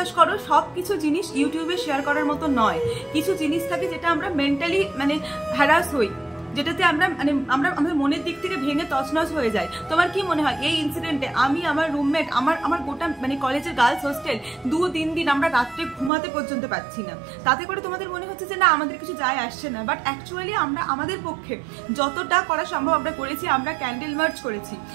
করো সব কিছু জিনিস ইউটিউবে শেয়ার করার মতো নয়। কিছু জিনিস থাকে যেটা আমরা মেন্টালি মানে হ্যারাস হই, যেটাতে আমরা মানে আমাদের মনের দিক থেকে ভেঙে তছনছ হয়ে যায়। তোমার কি মনে হয় এই ইনসিডেন্টে আমি, আমার রুমমেট, আমার গোটা মানে কলেজের গার্লস হোস্টেল 2-3 দিন আমরা রাত্রে ঘুমাতে পর্যন্ত পাচ্ছি না, তাতে করে তোমাদের মনে হচ্ছে যে না আমাদের কিছু যায় আসছে না। বাট অ্যাকচুয়ালি আমরা আমাদের পক্ষে যতটা করা সম্ভব আমরা করেছি। আমরা ক্যান্ডেল মার্চ করেছি,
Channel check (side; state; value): left; drops out; at 16.1 s